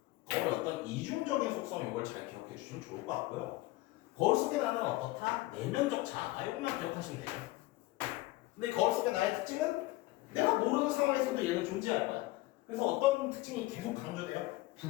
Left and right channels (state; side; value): quieter; right; 19.2 dB